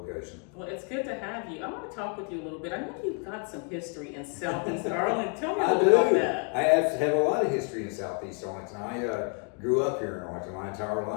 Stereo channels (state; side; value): quieter; right; 39.4 dB